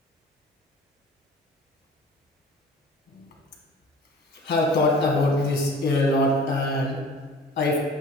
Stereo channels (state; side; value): normal; both; correlation 0.45